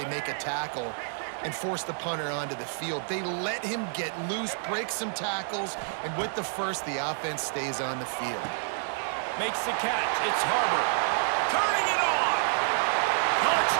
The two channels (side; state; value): left; silent; digital silence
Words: make a tackle, and force the punter onto the field. They let him get loose, break some tackles, and with the first, the offense stays on the field. Makes the catch. It's Harbor. Turning it on.